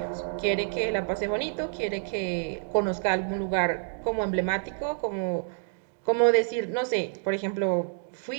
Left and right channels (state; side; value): silent; left; digital silence